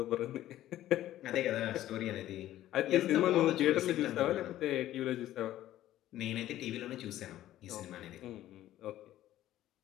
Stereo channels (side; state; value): right; quieter; 13.7 dB